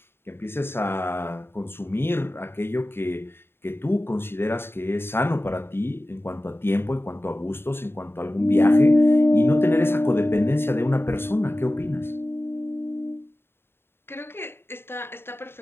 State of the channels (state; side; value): late; right; 0.11 ms